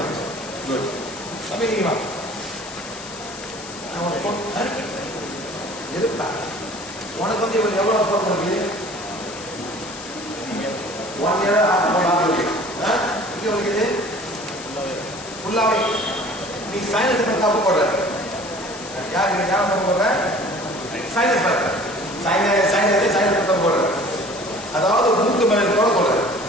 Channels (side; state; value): left; noise; hiss, 14 dB below the sound